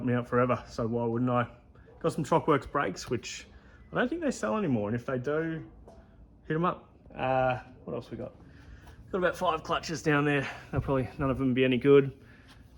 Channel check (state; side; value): identical; both; correlation 1.00